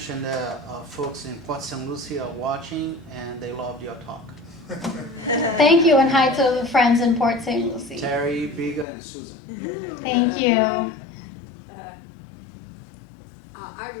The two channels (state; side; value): drops out; right; at 8.8 s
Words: that folks in Port St. Lucie are watching, and they loved your talk. Thank you, and hi to the friends in Port St. Lucie. Terry, Biga, and Susan. Thank you. I